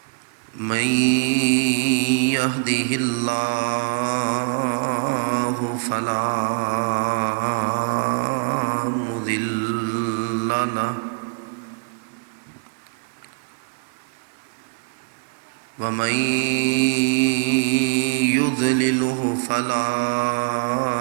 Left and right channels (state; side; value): quieter; left; 35.3 dB